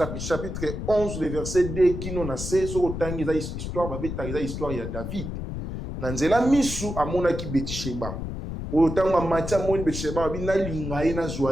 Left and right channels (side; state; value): left; noise; rumble, 6 dB below the sound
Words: chapitre 11, le verset 2, qui nous a fait, sur le temps, il y a histoire, il y a David. Nanzela misu amona ki Betisheba. Au temps où Matia moni Betisheba, bina lingaye na